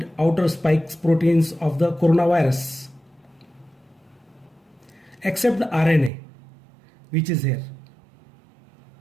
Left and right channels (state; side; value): drops out; left; at 6.1 s